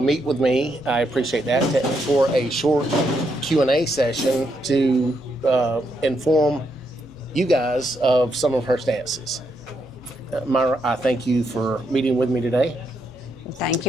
with me. I appreciate that for a short Q&A session to inform you guys of some of her stances. Myra, I thank you for meeting with me today. Thank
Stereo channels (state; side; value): normal; both; correlation 0.79